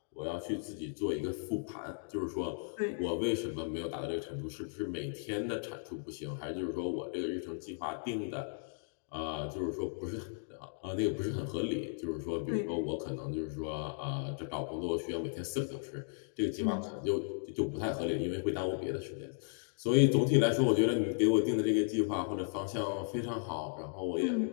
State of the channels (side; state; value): right; silent; digital silence